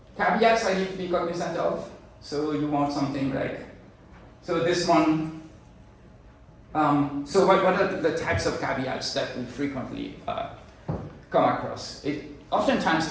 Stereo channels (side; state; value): both; identical; correlation 1.00